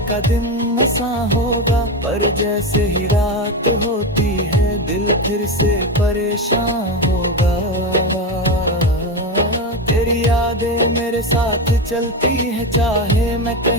का दिन ऐसा होगा, पर जैसे ही रात होती है दिल फिर से परेशान होगा। तेरी यादें मेरे साथ चलती है चाहे मैं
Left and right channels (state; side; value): normal; both; correlation 0.16